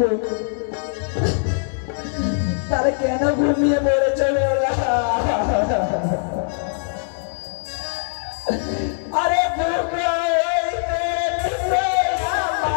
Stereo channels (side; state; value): right; silent; 64 dB below the other